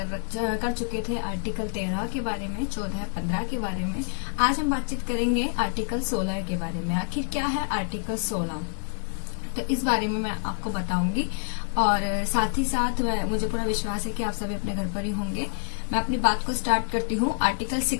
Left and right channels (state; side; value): silent; right; 60 dB below the other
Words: चुके थे आर्टिकल 13 के बारे में, 14, 15 के बारे में। आज हम बातचीत करेंगे आर्टिकल 16 के बारे में। आखिर क्या है आर्टिकल 16, तो इस बारे में मैं आपको बताऊंगी। और साथ ही साथ मुझे पूरा विश्वास है कि आप सभी अपने घर पर ही होंगे। मैं अपनी बात को स्टार्ट करती हूँ। आर्टिकल